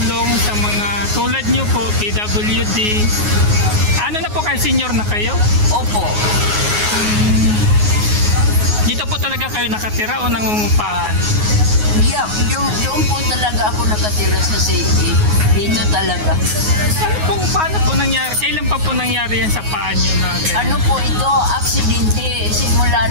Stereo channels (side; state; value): left; late; 9.5 ms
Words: sa mga tulad nyo po, PWD. Ano na po kayo, senior na kayo? Opo. Dito po talaga kayo nakatira o nangungupahan? Yeah, doon po talaga ako nakatira sa city. Dito talaga. Paano po nangyari? Kailan pa po nangyari yan sa paa nyo na ganyan? Ano po ito? Aksidente.